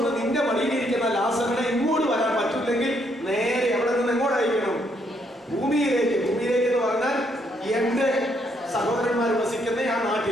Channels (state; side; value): normal; both; correlation 0.73